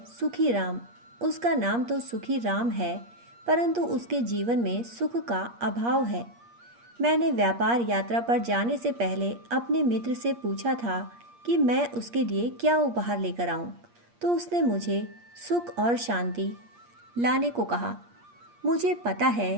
सुखी राम। उसका नाम तो सुखी राम है, परंतु उसके जीवन में सुख का अभाव है। मैंने व्यापार यात्रा पर जाने से पहले अपने मित्र से पूछा था कि मैं उसके लिए क्या उपहार लेकर आऊं, तो उसने मुझे सुख और शांति लाने को कहा। मुझे पता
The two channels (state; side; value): late; left; 8.5 ms